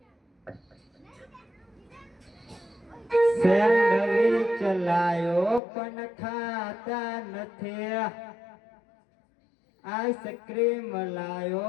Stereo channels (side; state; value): right; drops out; at 5.6 s